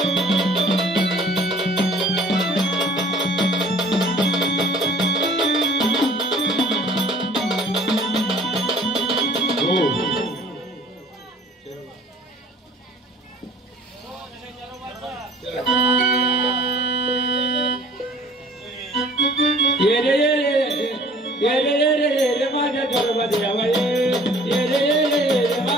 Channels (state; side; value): normal; both; correlation 0.51